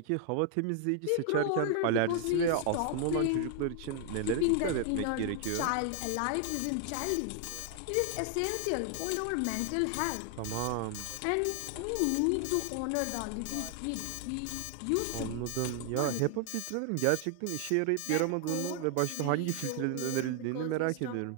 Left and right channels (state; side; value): different; both; correlation 0.00